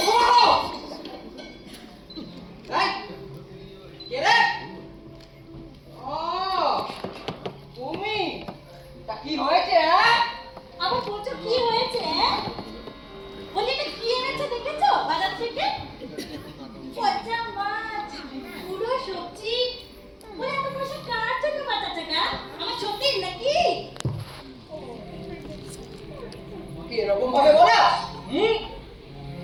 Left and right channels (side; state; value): both; identical; correlation 1.00